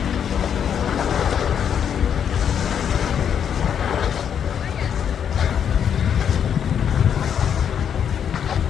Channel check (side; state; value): right; quieter; 8.3 dB